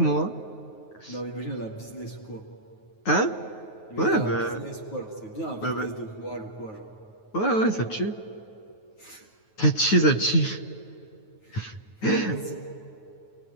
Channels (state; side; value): late; right; 9.3 ms